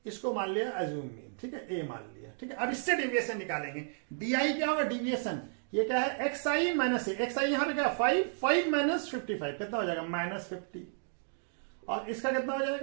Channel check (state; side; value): silent; left; digital silence